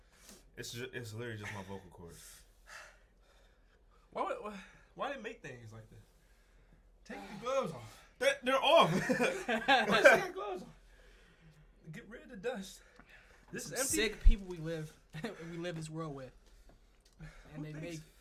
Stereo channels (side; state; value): both; identical; correlation 1.00